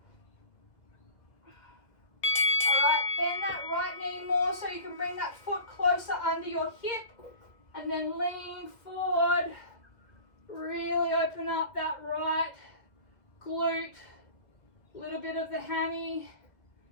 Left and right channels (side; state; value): right; late; 2.0 ms